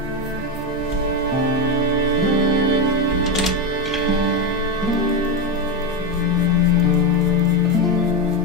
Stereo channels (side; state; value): both; normal; correlation 0.12